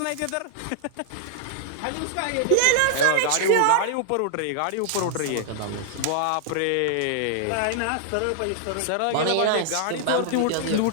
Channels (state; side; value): different; both; correlation -0.01